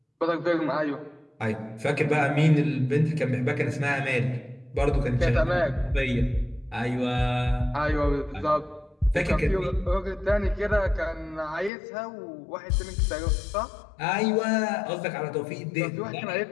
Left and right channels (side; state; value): right; drops out; at 11.7 s